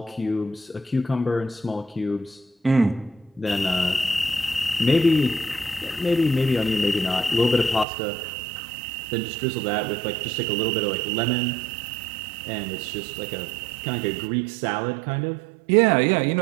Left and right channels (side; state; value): left; drops out; at 7.9 s